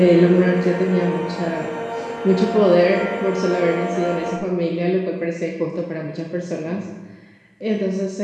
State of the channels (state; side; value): identical; both; correlation 1.00